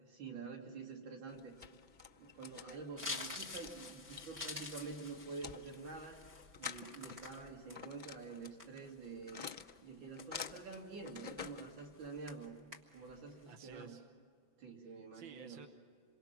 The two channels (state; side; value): late; left; 6.0 ms